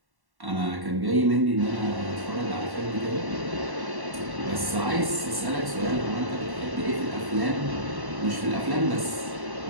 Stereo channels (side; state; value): left; late; 1.1 ms